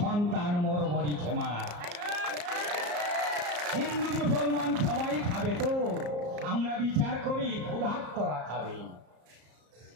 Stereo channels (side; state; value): left; late; 34 ms